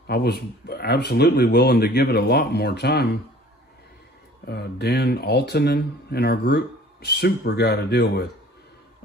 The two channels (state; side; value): normal; both; correlation 0.49